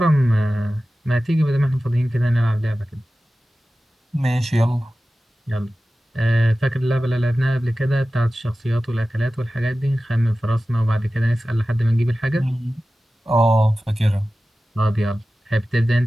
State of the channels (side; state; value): both; normal; correlation 0.95